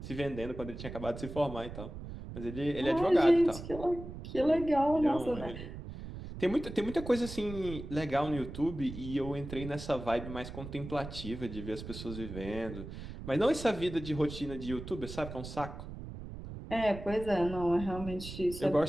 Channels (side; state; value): right; noise; rumble, 10 dB below the sound